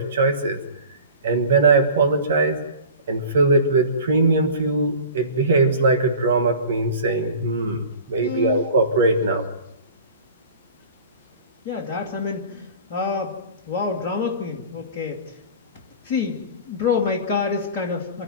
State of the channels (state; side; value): inverted; both; correlation -0.40